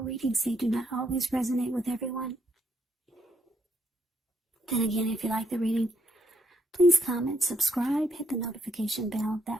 readings, they do not always resonate with everyone. Then again, if you like the reading, please comment, subscribe, hit the notification bell.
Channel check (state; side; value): normal; both; correlation 0.74